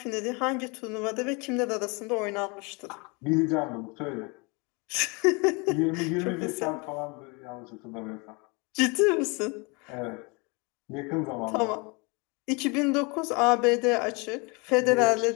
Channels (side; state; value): right; quieter; 29.6 dB